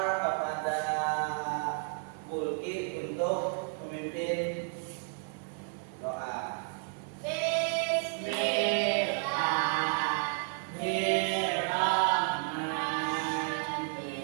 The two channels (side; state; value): left; silent; 56 dB below the other